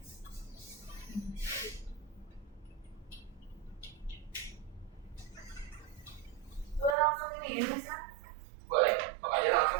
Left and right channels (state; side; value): drops out; left; at 7.0 s